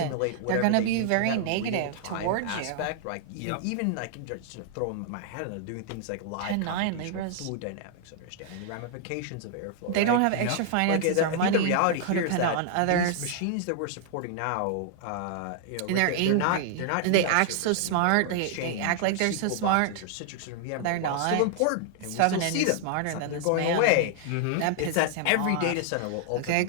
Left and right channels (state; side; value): different; both; correlation 0.00